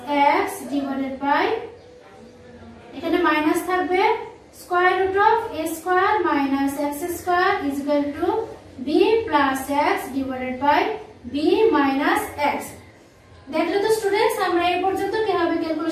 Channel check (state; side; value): identical; both; correlation 1.00